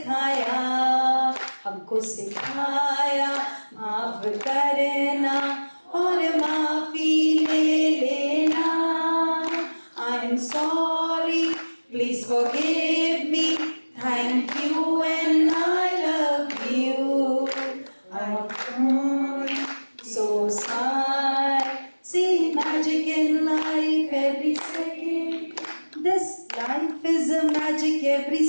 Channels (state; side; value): inverted; both; correlation -1.00